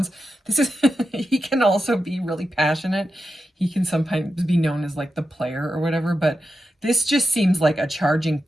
This is, he can also be really passionate. He can sometimes be known as like the player or whatever, but this just seems like a charging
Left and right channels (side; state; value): both; normal; correlation 0.89